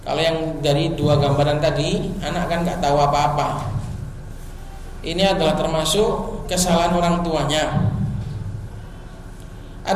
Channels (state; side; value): identical; both; correlation 1.00